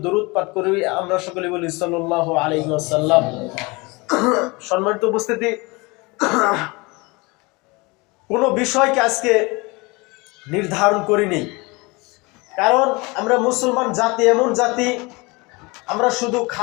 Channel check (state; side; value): quieter; right; 25.7 dB